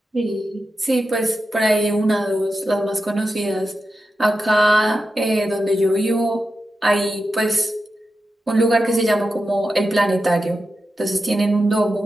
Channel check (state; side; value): normal; both; correlation 0.90